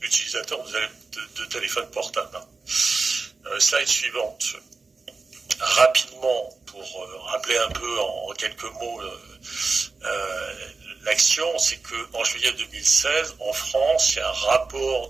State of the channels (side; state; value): left; quieter; 4.1 dB